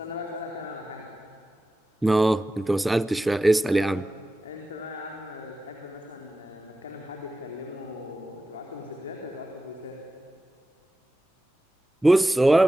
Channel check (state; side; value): normal; both; correlation 0.93